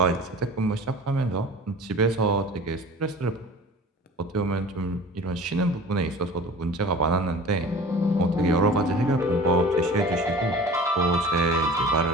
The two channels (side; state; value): both; normal; correlation 0.41